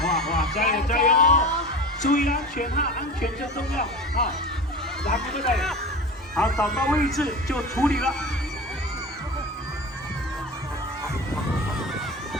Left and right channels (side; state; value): both; normal; correlation 0.32